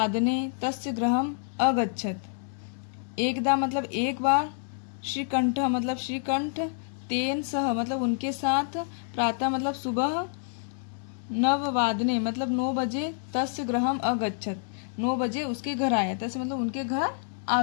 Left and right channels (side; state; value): right; silent; 58 dB below the other